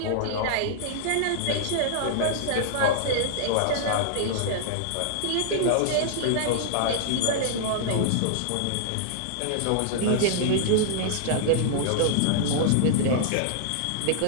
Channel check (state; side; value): different; both; correlation -0.01